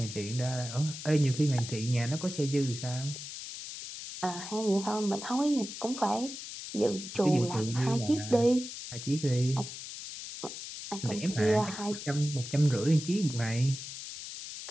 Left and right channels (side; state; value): left; noise; hiss, 10 dB below the sound